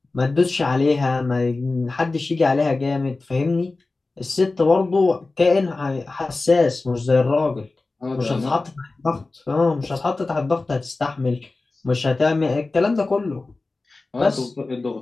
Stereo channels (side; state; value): right; quieter; 3.4 dB